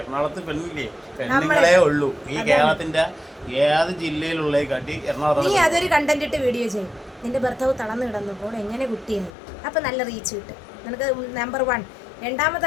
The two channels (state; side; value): drops out; right; at 9.3 s